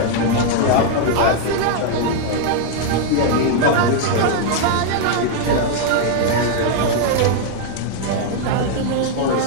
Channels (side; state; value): both; different; correlation 0.00